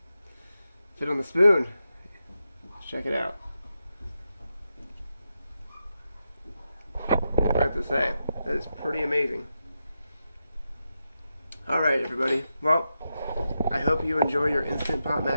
fit on the spoon. Let's check it out. I have to say, that is pretty amazing. Alright everybody. Well, I hope you enjoy your Instant Pot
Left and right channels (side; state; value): both; inverted; correlation -0.87